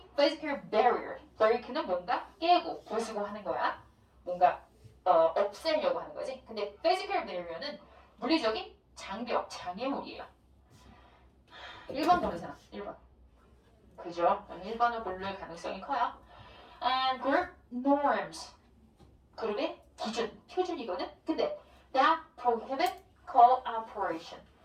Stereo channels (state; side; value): identical; both; correlation 1.00